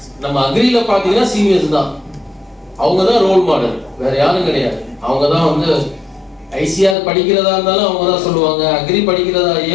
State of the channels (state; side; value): drops out; right; at 7.0 s